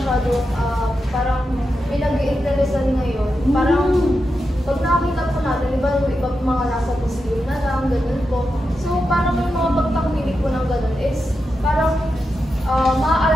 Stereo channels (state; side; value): normal; both; correlation 0.88